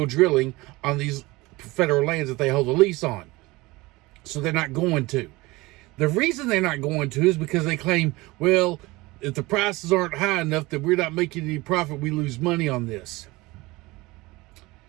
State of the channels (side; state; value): left; quieter; 21.6 dB